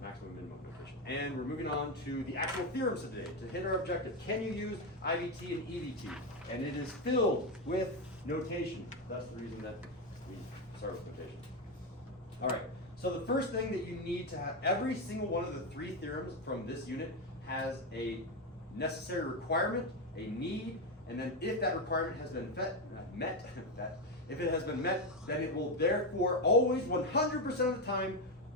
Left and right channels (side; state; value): both; normal; correlation 0.09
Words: maximum and minimum notation. And we're moving on to the actual theorems today to hit our objective. Can you use IVT and EVT? And it is filled with notation. That's the reason that we start with notation. All right, so the first thing that you need to have, every single one of the three theorems from this unit has a necessary requirement, a need, and then if that requirement has been met, if it has been met, then it will therefore always 100% of the time